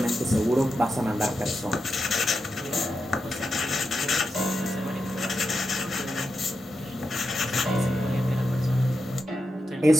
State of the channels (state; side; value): normal; both; correlation 0.87